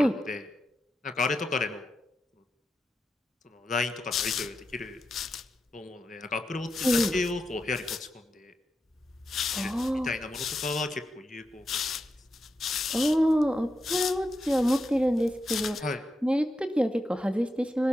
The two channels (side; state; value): both; normal; correlation 0.87